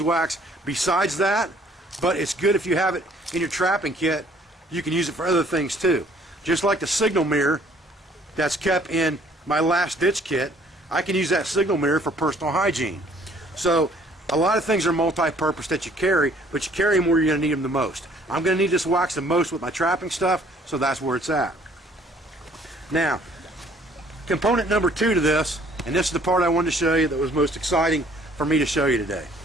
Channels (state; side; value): normal; both; correlation 0.59